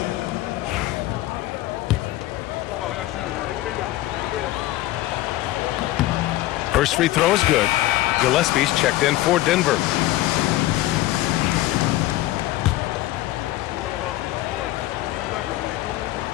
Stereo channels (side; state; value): right; quieter; 16.2 dB